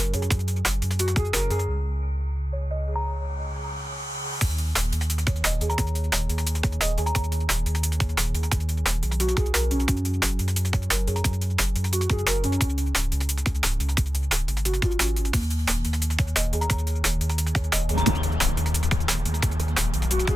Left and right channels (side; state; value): both; normal; correlation 0.94